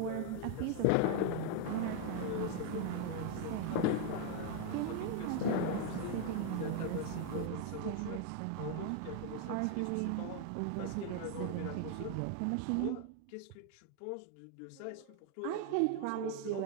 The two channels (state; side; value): different; both; correlation 0.00